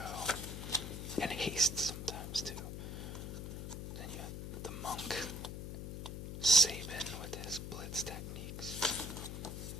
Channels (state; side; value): noise; left; hum, 6 dB below the sound